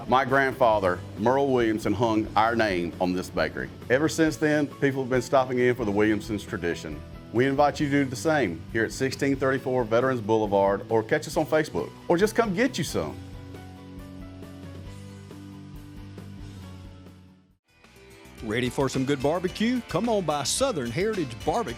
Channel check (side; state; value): both; identical; correlation 1.00